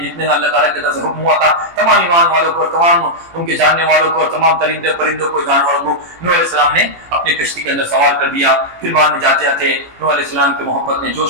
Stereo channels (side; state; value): left; late; 18 ms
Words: جتنے اللہ تعالیٰ کی طرف سے حکم ہوا تھا تمام ایمان والوں کو تمام ان کے جاننے والوں کو تمام ترندے پرندوں کو جانوروں کو نوح علیہ السلام نے اپنی کشتی کے اندر سوار کر دیا. پھر بعد میں جاتے جاتے نوح علیہ السلام کی محبت نے